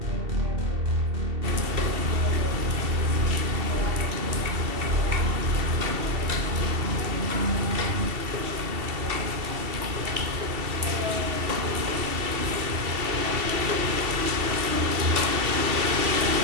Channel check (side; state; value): left; late; 2.7 ms